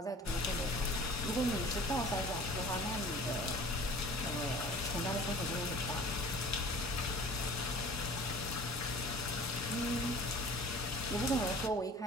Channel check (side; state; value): both; normal; correlation 0.45